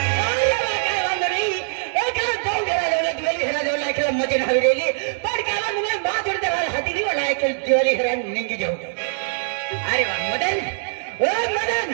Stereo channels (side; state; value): left; silent; digital silence